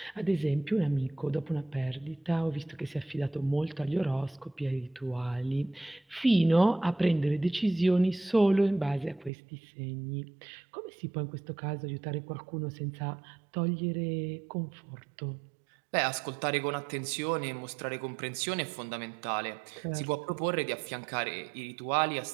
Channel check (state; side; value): drops out; left; at 9.3 s